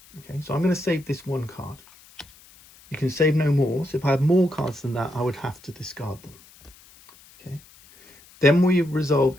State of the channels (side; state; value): left; noise; hiss, 25 dB below the sound